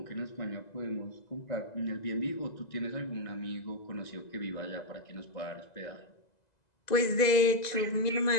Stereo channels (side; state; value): right; late; 2.0 ms